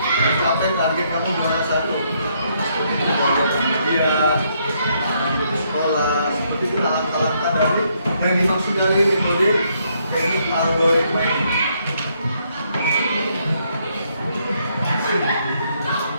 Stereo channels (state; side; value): inverted; both; correlation -0.73